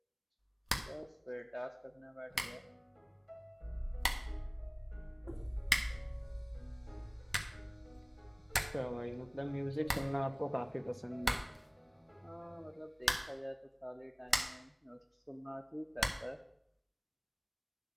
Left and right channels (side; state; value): both; identical; correlation 1.00